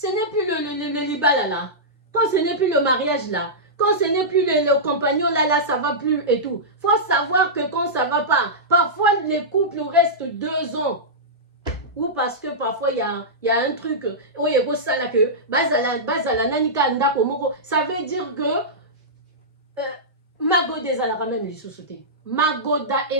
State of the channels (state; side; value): normal; both; correlation -0.13